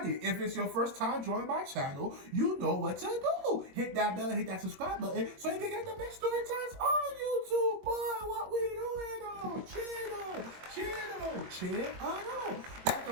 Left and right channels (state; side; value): late; left; 22 ms